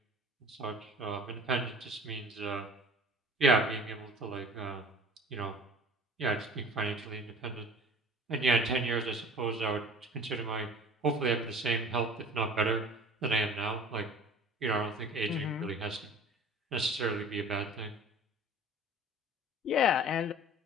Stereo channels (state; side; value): normal; both; correlation 0.44